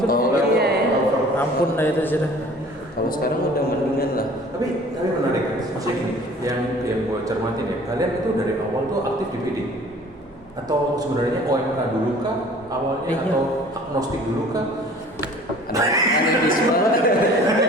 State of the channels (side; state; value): both; normal; correlation 0.49